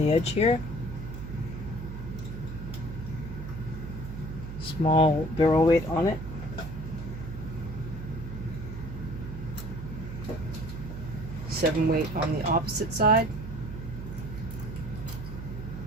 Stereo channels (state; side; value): noise; right; hum, 8 dB below the sound